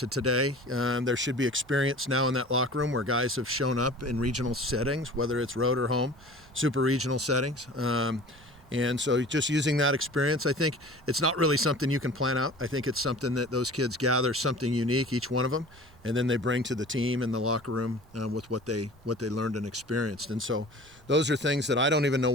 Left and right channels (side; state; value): both; normal; correlation 0.42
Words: today, there should be experience now in that locker room where guys have shown up in regional settings, whether it's road or home, super regional settings. And so just using that experience, I think it's not really something you can plan out. I think it's something that those kids gather, something unique, each one of them, and then they bring to the team in the locker room with what they learned and experienced. And so those are things that I don't even know